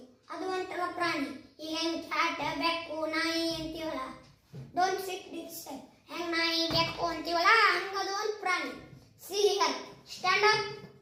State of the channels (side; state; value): both; identical; correlation 1.00